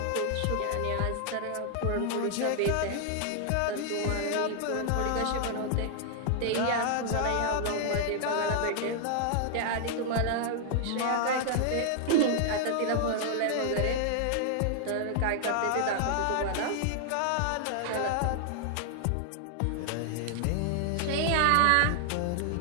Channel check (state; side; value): different; both; correlation 0.00